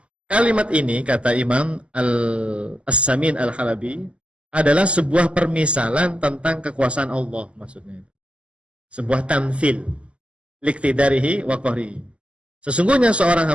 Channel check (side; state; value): left; late; 0.056 ms